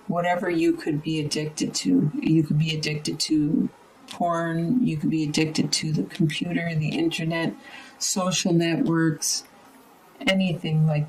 whatever you could be addicted to. You could be addicted to porn, you could be addicted to the computer, the internet, social networks, anything like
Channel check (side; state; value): both; identical; correlation 1.00